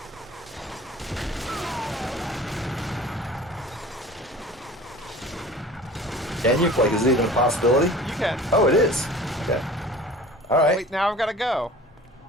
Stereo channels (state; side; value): normal; both; correlation 0.43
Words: Can you? Like, is it even a possibility? You can. Oh, it is. Okay. All right. Wait, now I've got to go.